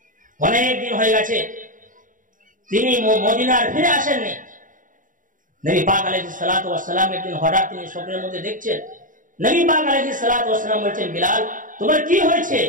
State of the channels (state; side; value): late; left; 0.38 ms